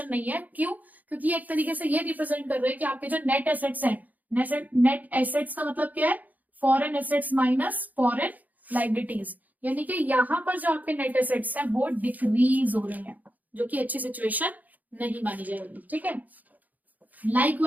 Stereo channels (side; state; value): left; late; 0.080 ms